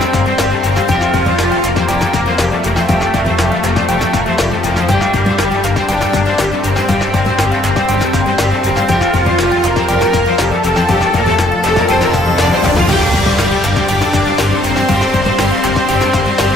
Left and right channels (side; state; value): both; normal; correlation 0.68